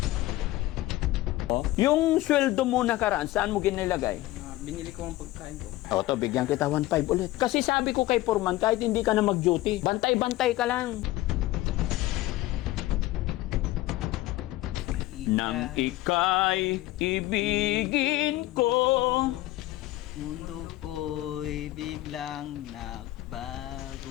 Yung sweldo mo nakaraan, saan mo ginilagay? Binili ko ang pagkain ko. To, bigyan kita 1.5 ulit. Kasi sabi ko kay Foreman, kahit hindi ka na mag-duty, bantay-bantay ka lang. Nang ika'y ibigin ko, mundo ko'y biglang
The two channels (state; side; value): quieter; right; 16.9 dB